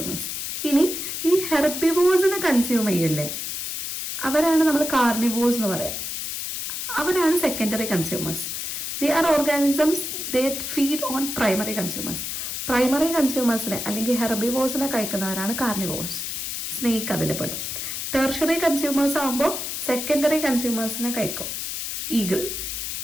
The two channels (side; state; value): left; noise; hiss, 4 dB below the sound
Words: ഇനി ഈ ഹെർബിവോസിനെ കൺസ്യൂം ചെയ്യില്ലേ, അവരാണ് നമ്മൾ കാർണിവോസ് എന്ന് പറയാം. അവരാണ് secondary consumers. They are organisms that feed on primary consumers. Primary കൺസ്യൂമേഴ്സിനെ അല്ലെങ്കിൽ ഹെർബിവോസിനെ കഴിക്കുന്നവരാണ് കാർണിവോസ്. സ്നേക്ക് അതിൽ പെടും. ടെർഷറി കൺസ്യൂമേഴ്സ് ആകുമ്പോൾ സെക്കൻഡറി കൺസ്യൂമേഴ്സിനെ കഴിക്കും, ഈഗിൾ.